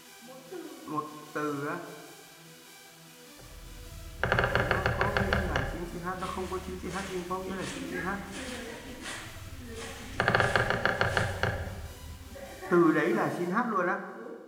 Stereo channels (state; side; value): identical; both; correlation 1.00